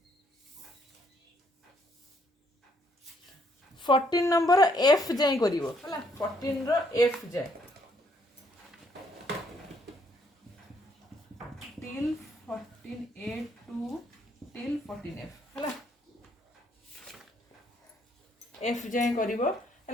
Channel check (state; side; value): normal; both; correlation 0.69